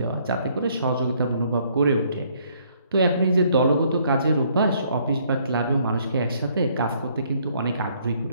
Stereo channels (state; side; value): inverted; both; correlation -0.66